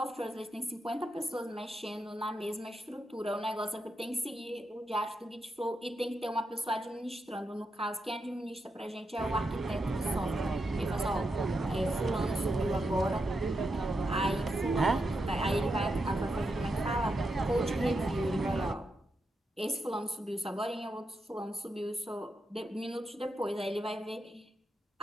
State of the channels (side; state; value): both; normal; correlation 0.85